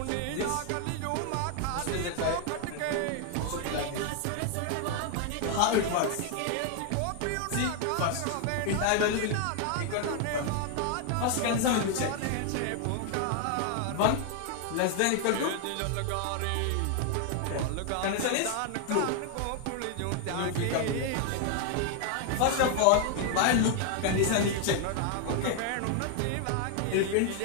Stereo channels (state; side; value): different; both; correlation 0.00